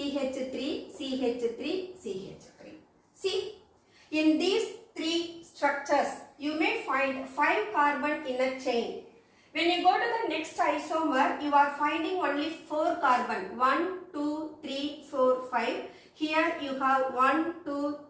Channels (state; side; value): identical; both; correlation 1.00